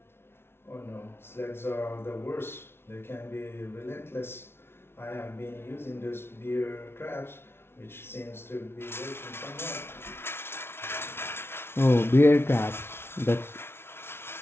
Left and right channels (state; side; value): late; right; 0.12 ms